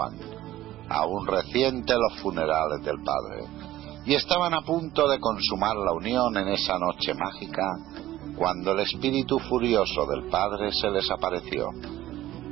aún reciente los funerales del padre, y estaban a punto de consumar la unión en esa noche mágica, cuando el espíritu furioso del padre se les apareció,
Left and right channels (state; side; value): quieter; left; 14.9 dB